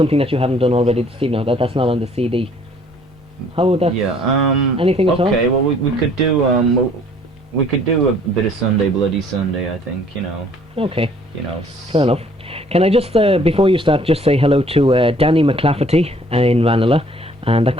that you haven't done already this evening. That's not on the CD. How would that? Yeah. Anything at all? Okay. Well, we could do a bit of Sunday Bloody Sunday. I think, you know. Okay. You know. Fair enough. Can I just before you start, just say hello to Danny McClafferty in Ranelagh, and that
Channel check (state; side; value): normal; both; correlation 0.58